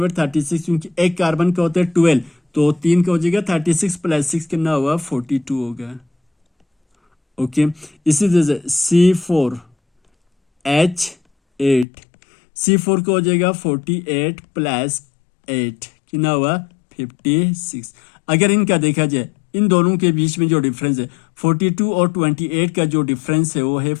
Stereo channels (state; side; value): drops out; right; at 11.9 s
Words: 36, क्योंकि एक कार्बन का होता है 12, तो 3 का हो जाएगा 36 प्लस 6 कितना हुआ 42 होगा। ओके, इसी तरह से C4H8, C4 का हो जाएगा 48 प्लस 8 कितना हुआ 56। अगर इनका देखा जाए, इन दोनों के बीच में जो डिफरेंस है 42 और 28 का जो डिफरेंस है वो है